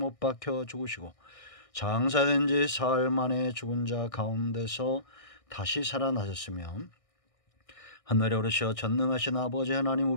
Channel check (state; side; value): late; right; 1.6 ms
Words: 박혀 죽으시고 장사된 지 사흘 만에 죽은 자 가운데서 다시 살아나셨으며 하늘에 오르셔 전능하신 아버지 하나님